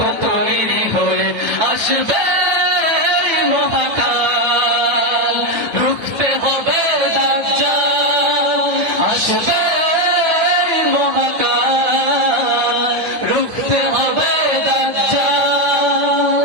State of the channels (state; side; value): late; left; 9.1 ms